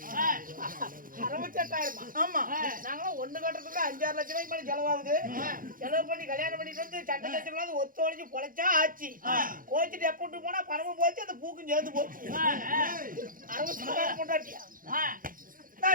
68,000 ஆமா நாங்களும் ஒண்ணு கட்டுறதுக்கு 5-6 லட்சம் ரூபாய்க்கு மேல செலவாகுது செலவு பண்ணி கல்யாணம் பண்ணிட்டு வந்து சண்டை லட்சம் ஒத்து ஒழிஞ்சு பொழைச்சா ஆச்சு கோச்சிட்டு எப்பட்டு போனா பணமும் போச்சு அந்த பூக்கும் சேர்ந்து போச்சு 60,000 கொண்டாட்டியா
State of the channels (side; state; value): left; late; 0.40 ms